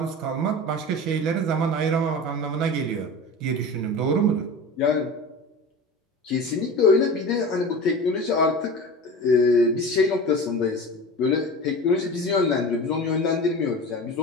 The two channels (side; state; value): both; normal; correlation 0.32